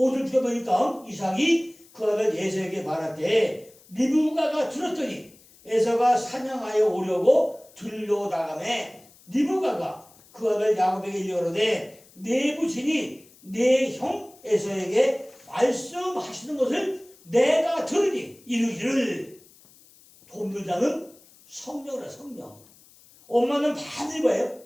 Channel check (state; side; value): noise; left; hiss, 26 dB below the sound